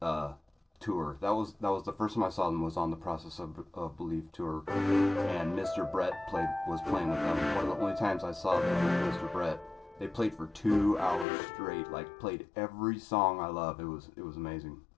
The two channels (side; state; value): right; drops out; at 11.2 s